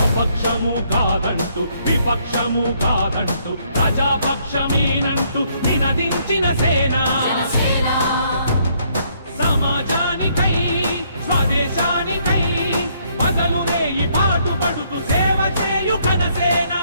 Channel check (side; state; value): both; inverted; correlation -0.69